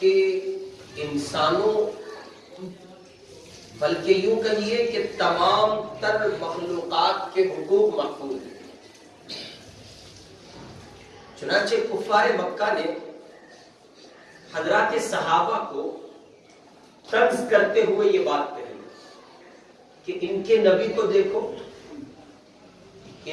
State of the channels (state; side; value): identical; both; correlation 1.00